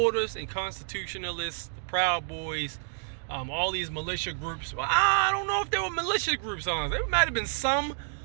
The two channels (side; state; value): left; silent; 58 dB below the other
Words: and constitutionalists, the Proud Boys, all these militia groups. Well, I don't know if there were militia groups on. There might have been some,